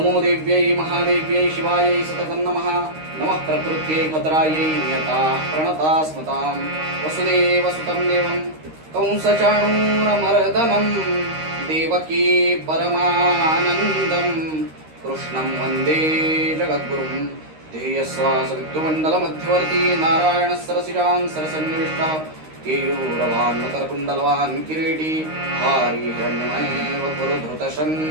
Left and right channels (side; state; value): left; late; 13 ms